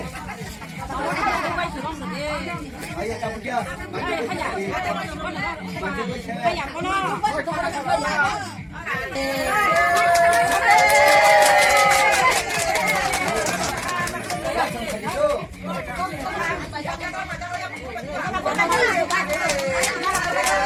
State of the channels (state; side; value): identical; both; correlation 1.00